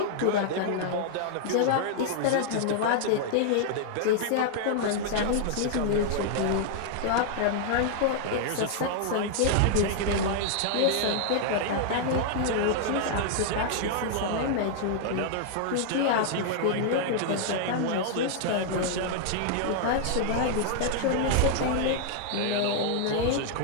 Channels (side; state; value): both; different; correlation -0.01